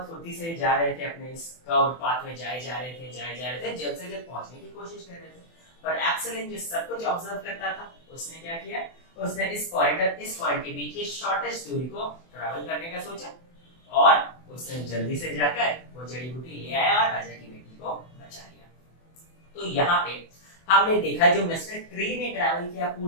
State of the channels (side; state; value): right; late; 24 ms